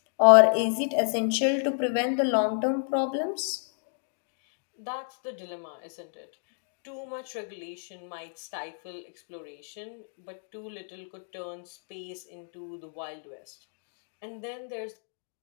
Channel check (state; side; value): silent; right; digital silence